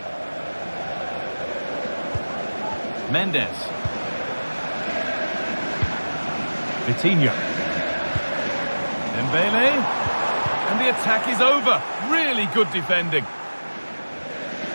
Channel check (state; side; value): inverted; both; correlation -1.00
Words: Mendes. Vitinha. Dembele. And the attack is over. Really good defending.